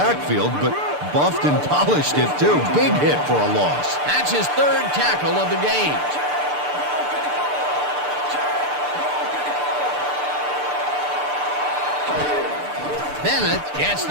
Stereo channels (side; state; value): left; late; 6.8 ms